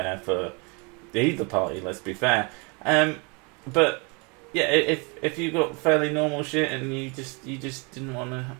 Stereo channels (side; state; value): left; quieter; 31.2 dB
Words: for either party, let's be fair. But yeah, if you got fairly normal shit and you just didn't want